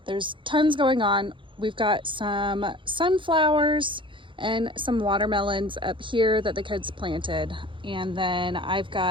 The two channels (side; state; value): left; late; 0.24 ms